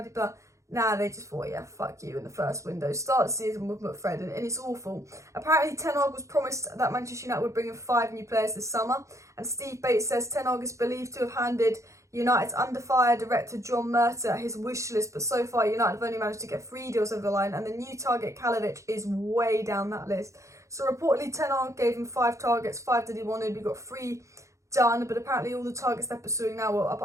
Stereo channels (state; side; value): late; left; 0.15 ms